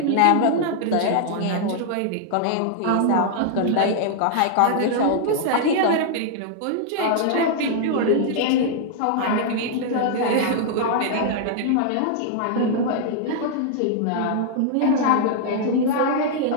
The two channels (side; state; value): both; different; correlation -0.01